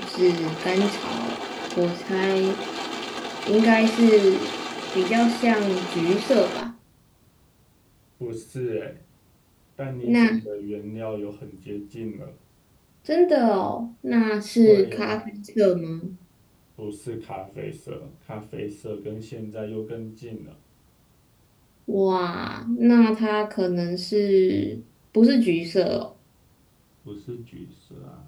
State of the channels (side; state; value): both; identical; correlation 1.00